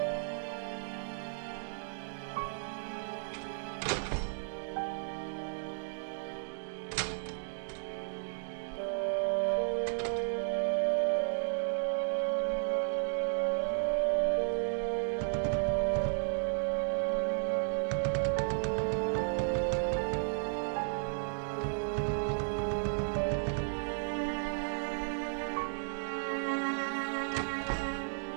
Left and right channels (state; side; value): silent; left; digital silence